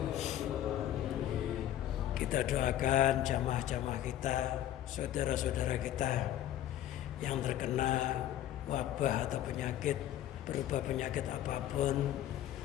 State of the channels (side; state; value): right; quieter; 12.1 dB